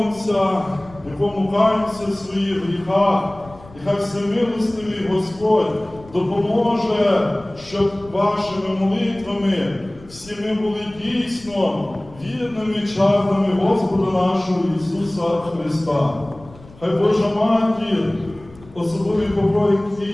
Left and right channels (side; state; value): left; noise; rumble, 22 dB below the sound